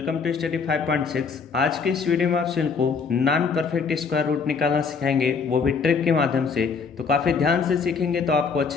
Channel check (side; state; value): right; quieter; 5.4 dB